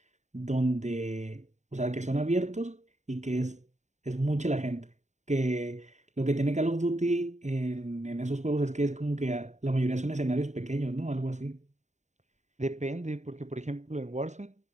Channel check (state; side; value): late; left; 0.34 ms